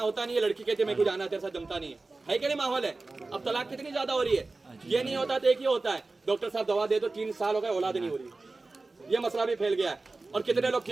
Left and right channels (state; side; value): quieter; left; 3.4 dB